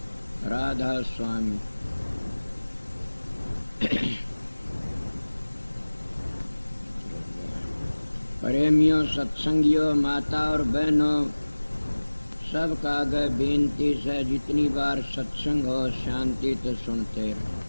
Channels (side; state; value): both; inverted; correlation -1.00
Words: राधा स्वामी। प्रेमियों, सत्संगियों, माता और बहनों, सब का आगे बेनती से जितनी बार सत्संग हो शांति तो सुनते रहो।